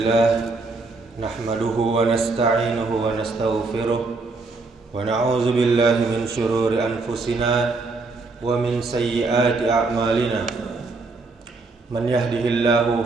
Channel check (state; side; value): quieter; left; 3.7 dB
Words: nahmaduhu wa nasta'inuhu wa nastaghfiruh wa na'udzu billahi min shururi anfusina wa min sayyiati a'malina. Man